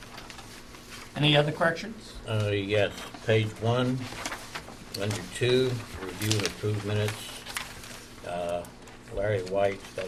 Any other corrections? Yes, page 1, under 2, review and approve minutes. Larry White,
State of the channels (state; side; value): identical; both; correlation 1.00